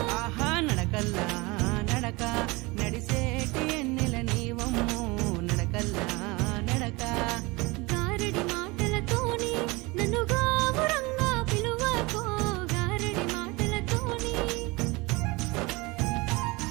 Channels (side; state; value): left; quieter; 24.4 dB